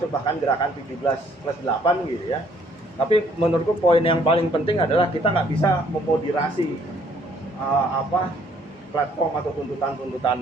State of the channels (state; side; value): normal; both; correlation 0.63